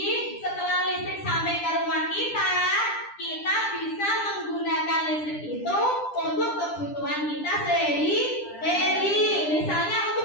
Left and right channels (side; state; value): right; late; 10 ms